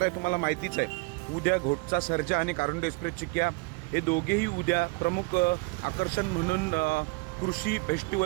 आहे, तुम्हाला माहितीच आहे। उद्या घोटचा सर्जा आणि कारंडे एक्सप्रेस चिक्या हे दोघेही उद्या प्रमुख आकर्षण म्हणून कृषी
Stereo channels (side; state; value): left; quieter; 28.2 dB